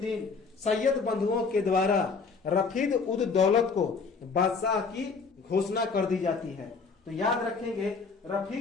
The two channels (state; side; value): quieter; right; 4.8 dB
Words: सैयद बंधुओं के द्वारा रफीद उद दौलत को बादशाह की घोषणा कर दी जाती है। तो याद रखेंगे